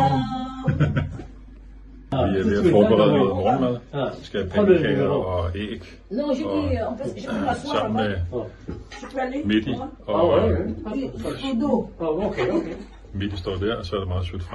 Vi er ved at forberede noget morgenmad. Vi skal have pandekager og æg. Non, je dis, en fait, je peux m'asseoir Sammen med Je peux aller Midi og Okay. Midi står der, og så er der meget sødt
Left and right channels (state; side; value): identical; both; correlation 1.00